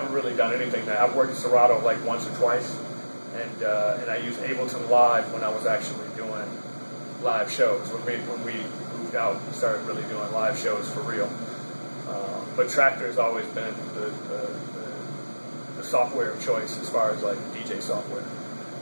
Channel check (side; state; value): both; inverted; correlation -1.00